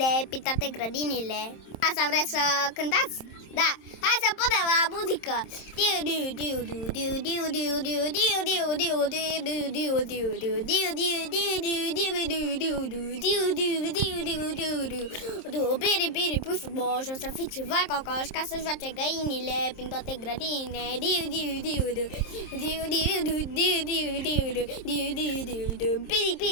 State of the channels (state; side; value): late; right; 27 ms